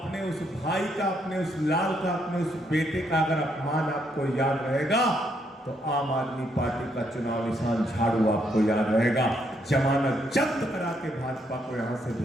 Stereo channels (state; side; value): normal; both; correlation 0.75